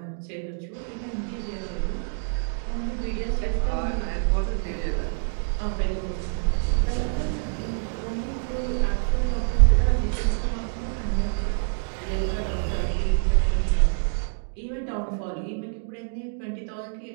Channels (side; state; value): left; silent; digital silence